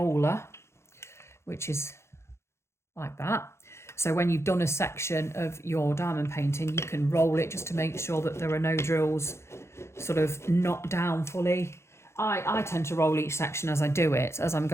which is like that. So when you've done a section of your diamond painting, you can roll it just to make sure that there are no drills sort of knocked down fully. I tend to roll each section as I do it, as I'm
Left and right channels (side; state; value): right; late; 0.13 ms